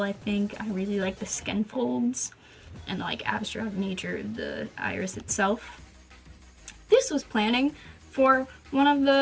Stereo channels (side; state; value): both; identical; correlation 1.00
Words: I think. I really like the skin folds and like abstract nature of the iris itself. This was planning for one of